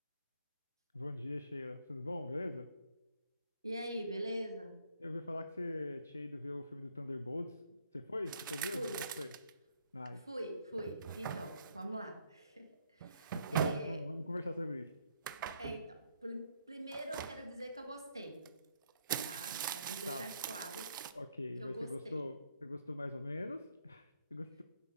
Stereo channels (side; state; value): both; inverted; correlation -0.70